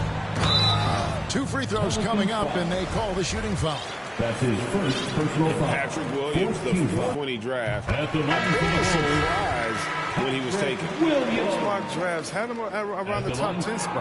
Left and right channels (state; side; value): identical; both; correlation 1.00